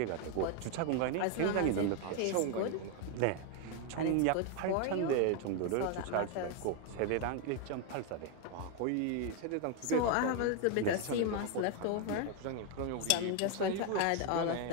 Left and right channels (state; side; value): different; both; correlation 0.01